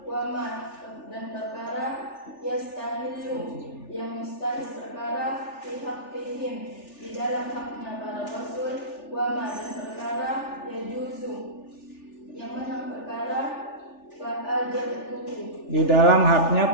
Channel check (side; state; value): right; late; 3.4 ms